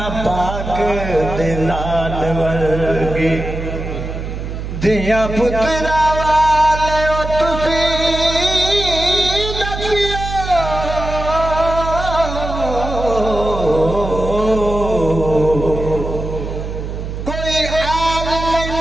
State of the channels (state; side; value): noise; right; hum, 6 dB below the sound